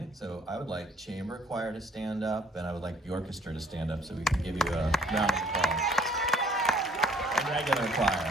So I would like chamber choir to stand up, and I would like the orchestra to stand up so we can give you a round of applause. And regular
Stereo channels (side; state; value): both; normal; correlation 0.60